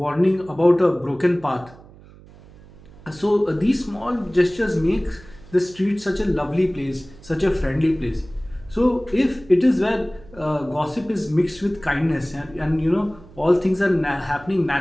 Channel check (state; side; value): noise; right; hum, 22 dB below the sound